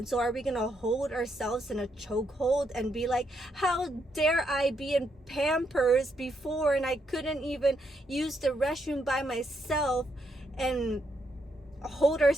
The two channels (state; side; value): normal; both; correlation 0.78